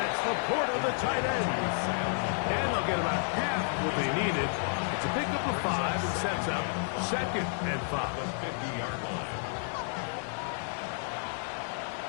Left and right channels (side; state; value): right; silent; 57 dB below the other